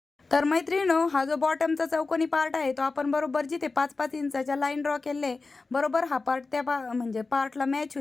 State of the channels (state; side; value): quieter; right; 3.8 dB